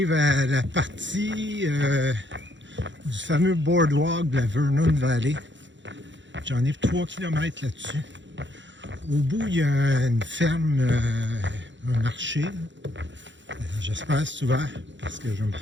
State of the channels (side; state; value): left; late; 0.54 ms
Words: à la partie du fameux boardwalk de la Vernon Valley. J'en ai 3 km là-dessus. Au bout, il y a une ferme, un marché. J'espère que c'est ouvert parce que je vais me